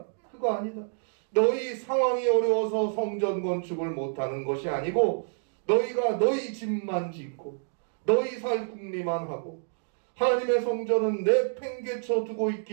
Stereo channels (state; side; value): silent; left; digital silence